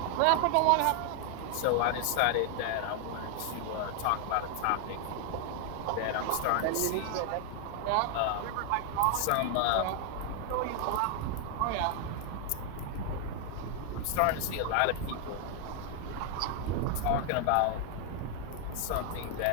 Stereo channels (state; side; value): different; both; correlation 0.00